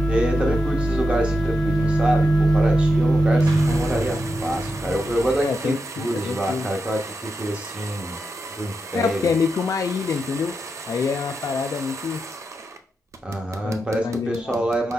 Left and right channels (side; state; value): both; normal; correlation 0.87